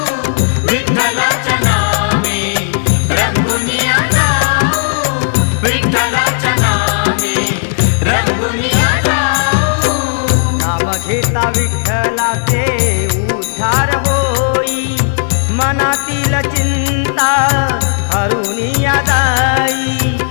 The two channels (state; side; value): silent; right; digital silence